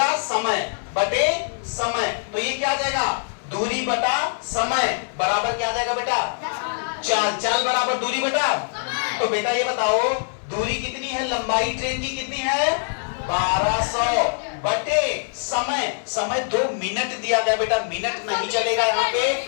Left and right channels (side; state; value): right; silent; 61 dB below the other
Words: समय बटे समय, तो ये क्या आ जाएगा? दूरी बटा समय बराबर क्या आ जाएगा बेटा? चाल बराबर दूरी बटा। तो बेटा ये बताओ दूरी कितनी है? लंबाई ट्रेन की कितनी है? 1200 बटे समय 2 मिनट दिया गया बेटा, मिनट नहीं चलेगा यहाँ